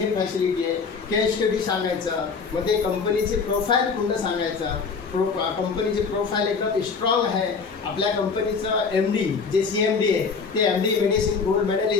फॅसिलिटी आहे, कॅश क्रेडिट सांगायचं. मग ते कंपनीची प्रोफाईल पूर्ण सांगायचं. कंपनीची प्रोफाईल एकदम स्ट्रॉंग आहे. आपल्या कंपनीचं MD जे CMD आहे ते MD मेडिसिन गोल्ड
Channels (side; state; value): right; quieter; 5.1 dB